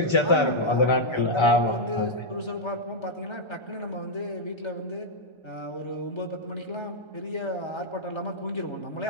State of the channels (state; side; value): late; right; 1.3 ms